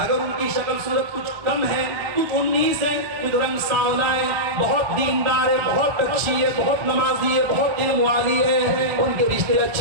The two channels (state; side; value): late; left; 1.8 ms